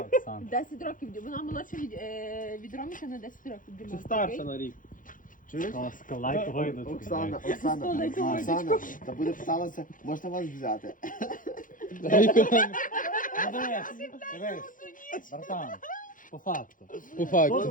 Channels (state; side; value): late; right; 0.39 ms